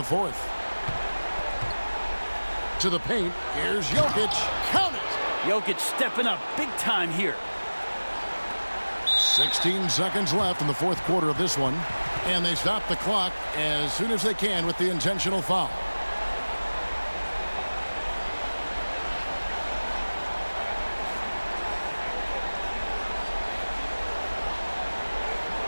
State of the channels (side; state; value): both; inverted; correlation -1.00